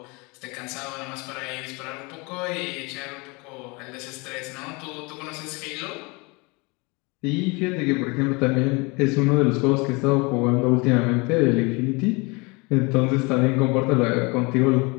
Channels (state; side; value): quieter; right; 27.6 dB